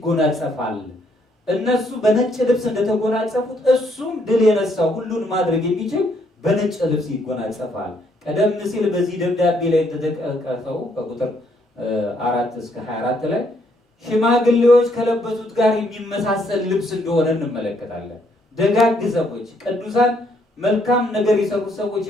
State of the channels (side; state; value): both; normal; correlation 0.70